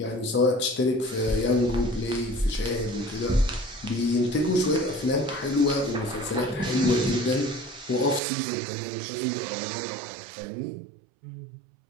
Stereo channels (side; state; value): left; drops out; at 8.2 s